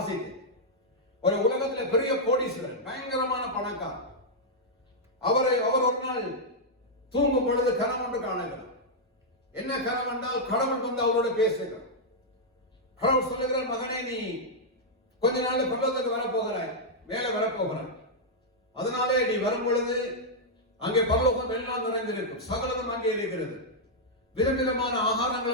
ஒரு உலகத்துல பெரிய கோடீஸ்வரன், பயங்கரமான பணக்காரர். அவர் ஒரு நாள் தூங்கும் பொழுது கனவு ஒன்று காணுகிறார். என்ன கனவு என்றால், கடவுள் வந்து அவரோட பேசுகிறார். கடவுள் சொல்லுகிறார், மகனே நீ கொஞ்ச நாள் பரலோகத்துக்கு வரப்போகிறாய், வேலை வரப்போகிறார். அதனாலே நீ வரும் பொழுது அங்கே பரலோகம் எல்லாம் நிறைந்திருக்கும், சகலமும் அங்கே இருக்கிறது, விதவிதமான ஆகாரங்கள்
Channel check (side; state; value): both; normal; correlation -0.06